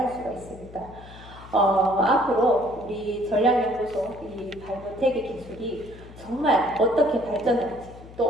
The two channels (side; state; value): left; noise; hum, 18 dB below the sound